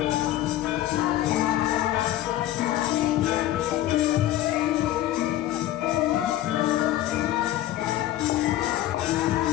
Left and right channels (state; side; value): quieter; right; 13.9 dB